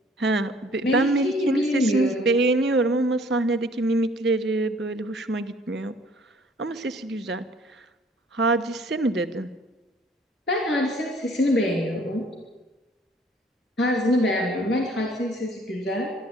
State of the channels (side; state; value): both; normal; correlation 0.56